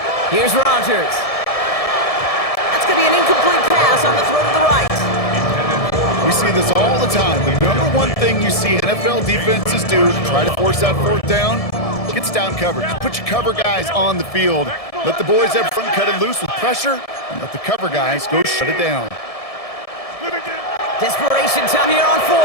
Here's Rodgers. That's going to be an incomplete pass on the throw to the right. We see this all the time. The number one thing you see NFL defenses do to try to force that 4th down, gets down coverage. Put your cover guys on the field. Let the boys up front cut it loose with pressure, and let the cover guys go shut it down. Desperation time here on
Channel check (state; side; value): late; right; 1.7 ms